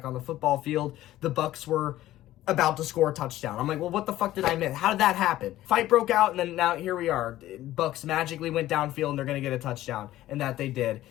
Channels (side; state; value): right; quieter; 14.7 dB